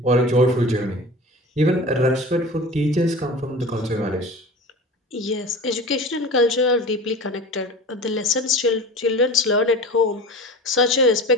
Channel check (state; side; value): normal; both; correlation 0.35